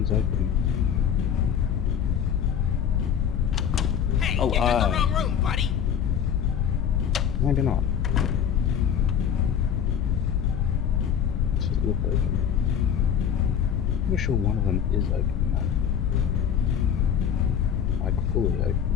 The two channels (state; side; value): quieter; right; 8.3 dB